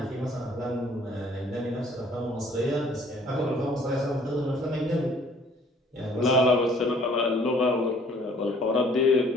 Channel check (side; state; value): both; normal; correlation 0.57